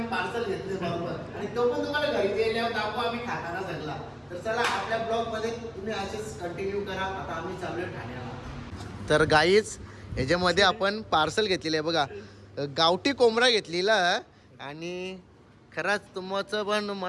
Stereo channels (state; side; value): identical; both; correlation 1.00